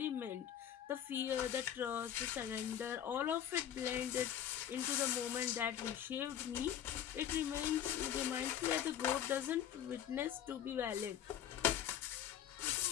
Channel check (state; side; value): quieter; right; 10.2 dB